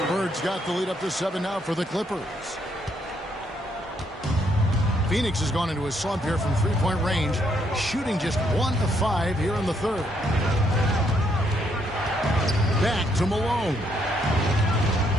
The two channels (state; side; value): normal; both; correlation 0.73